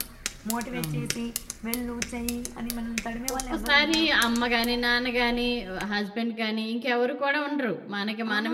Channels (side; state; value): both; identical; correlation 1.00